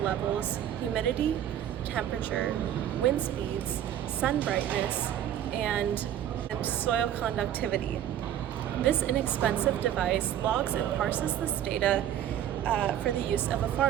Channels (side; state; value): left; quieter; 10.9 dB